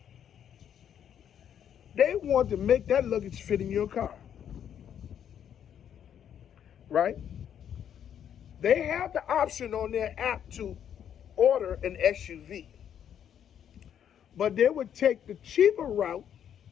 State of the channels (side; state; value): right; quieter; 9.2 dB